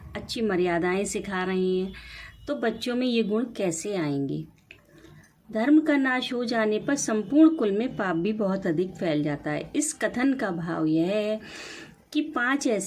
अच्छी मर्यादाएं सिखा रहे हैं, तो बच्चों में ये गुण कैसे आएंगे। धर्म का नाश हो जाने पर संपूर्ण कुल में पाप भी बहुत अधिक फैल जाता है। इस कथन का भाव यह है कि 5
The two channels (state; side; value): identical; both; correlation 1.00